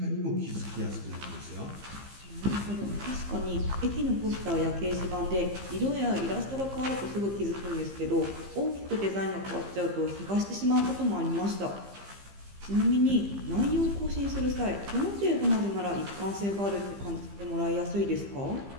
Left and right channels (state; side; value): late; left; 15 ms